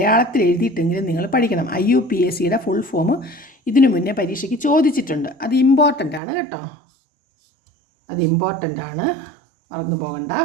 എഴുതിയിട്ടെങ്കിലും നിങ്ങൾ പഠിക്കണം. IUPACയുടെ ഫുൾ ഫോം ഇതിനു മുന്നേ പരീക്ഷയ്ക്ക് ചോദിച്ചിട്ടുണ്ട്. അത് ഇമ്പോർട്ടൻ്റ് ആണ് കേട്ടോ, അത് ഇമ്പോർട്ടൻ്റ് ആണ്, മറന്നു പോകണ്ട.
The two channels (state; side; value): drops out; left; at 6.2 s